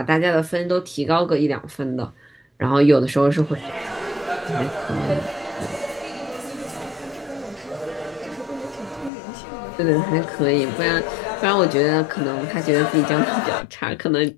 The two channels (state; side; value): drops out; right; at 9.1 s